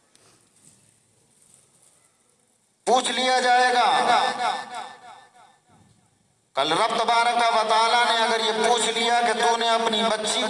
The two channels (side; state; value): both; identical; correlation 1.00